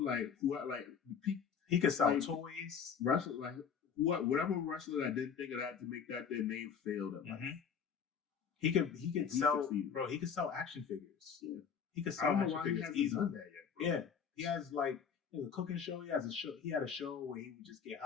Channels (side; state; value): right; quieter; 6.9 dB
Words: He could sell toys. Wrestler, like whatever wrestler that didn't think of that to make that their name failed at life. He could sell, succeeded. Bro. He could sell action figures. Yeah, he could sell action figures easily. Done that yet, bro. Yeah, he has like a cooking show. He had a show where he would just get